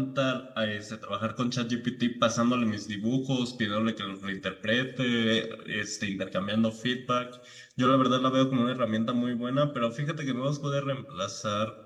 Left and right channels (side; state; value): both; identical; correlation 1.00